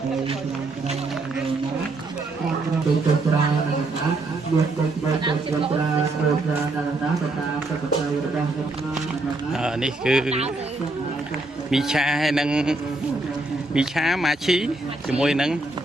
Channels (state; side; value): quieter; left; 3.0 dB